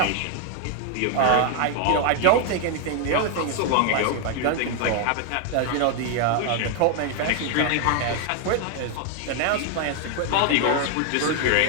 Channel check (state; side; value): different; both; correlation 0.00